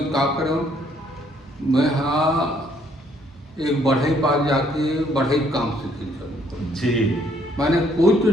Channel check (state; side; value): normal; both; correlation 0.66